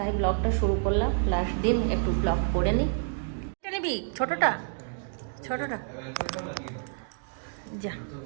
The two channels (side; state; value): left; silent; digital silence